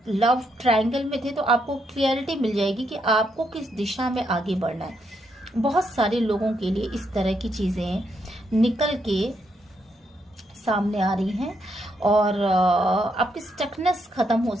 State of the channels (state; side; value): normal; both; correlation 0.78